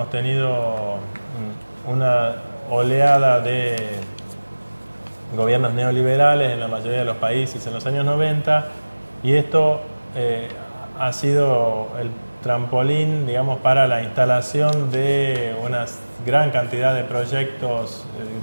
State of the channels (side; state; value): both; inverted; correlation -1.00